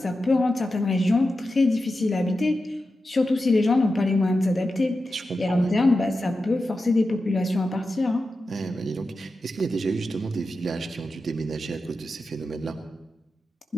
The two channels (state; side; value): normal; both; correlation 0.91